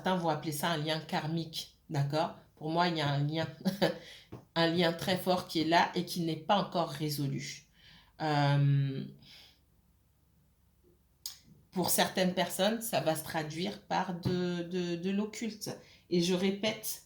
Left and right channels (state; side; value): identical; both; correlation 1.00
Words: vont appeler ça un lien karmique, d'accord? Pour moi, il y a un lien, un lien très fort qui est là et qui n'est pas encore résolu. Pour certaines personnes, ça va se traduire par de l'occulte. Et je répète,